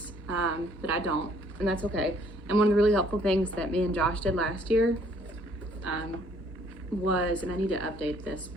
but I don't, and that's okay. And one of the really helpful things that me and Josh did last year was, and I need to update this,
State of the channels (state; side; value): normal; both; correlation 0.62